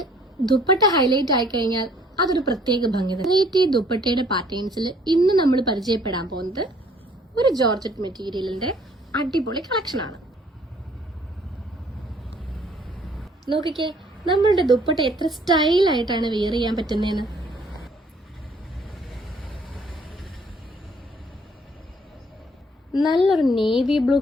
ദുപ്പട്ട ഹൈലൈറ്റ് ആയി കഴിഞ്ഞാൽ അതൊരു പ്രത്യേക ഭംഗി. വെറൈറ്റി ദുപ്പട്ടയുടെ പാറ്റേൺസിൽ ഇന്ന് നമ്മൾ പരിചയപ്പെടാൻ പോകുന്നത് ഒരു ജോർജറ്റ് മെറ്റീരിയലിന്റെ അടിപൊളി കളക്ഷനാണ്. നോക്കിക്കേ, നമ്മളുടെ ദുപ്പട്ട എത്ര സ്റ്റൈലായിട്ടാണ് വെയർ ചെയ്യാൻ പറ്റുന്നതെന്ന്. നല്ലൊരു നേവി ബ്ലൂ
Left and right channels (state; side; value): normal; both; correlation 0.60